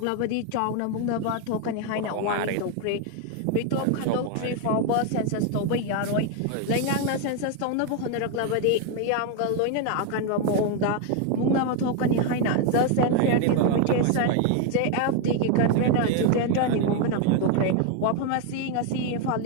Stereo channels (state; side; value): different; both; correlation 0.01